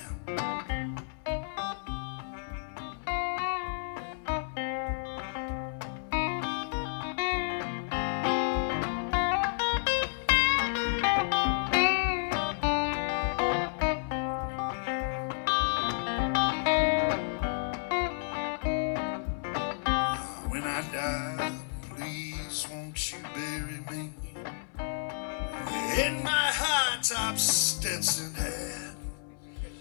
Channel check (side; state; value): right; silent; 57 dB below the other